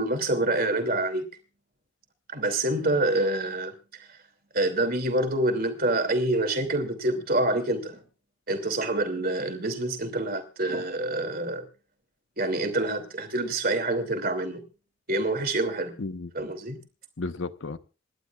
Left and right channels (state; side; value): normal; both; correlation 0.15